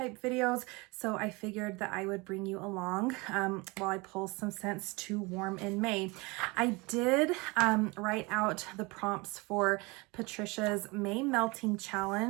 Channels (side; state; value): left; quieter; 25.8 dB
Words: videos, so I figured that I would bring you along while I pull some scents to warm in May. I did write out the prompts for Patricia's May melting